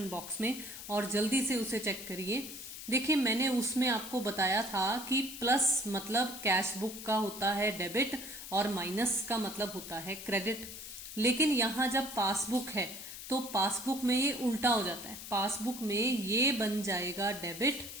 बॉक्स में और जल्दी से उसे चेक करिए। देखिए मैंने उसमें आपको बताया था कि प्लस मतलब कैश बुक का होता है डेबिट और माइनस का मतलब होता है क्रेडिट। लेकिन यहाँ जब पासबुक है तो पासबुक में ये उल्टा हो जाता है। पासबुक में ये बन जाएगा डेबिट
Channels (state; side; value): noise; left; hiss, 11 dB below the sound